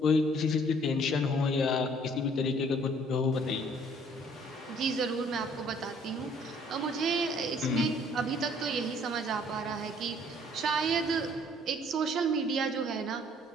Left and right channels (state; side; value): normal; both; correlation 0.59